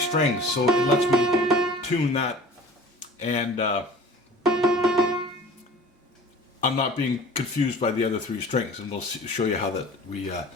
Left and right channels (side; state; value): both; normal; correlation 0.44